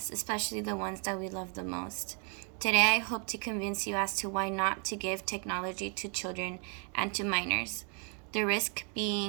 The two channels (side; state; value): left; quieter; 39.3 dB